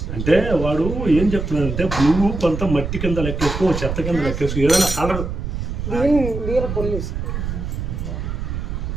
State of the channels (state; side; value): noise; right; rumble, 4 dB below the sound